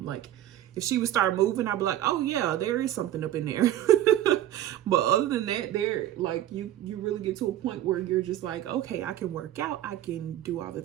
if she would start moving, I'd be like, oh yeah, there is something up in there. But other than that, there, like, you really get to a point where you're just like, okay, I can work out, I can do all the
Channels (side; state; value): left; quieter; 12.6 dB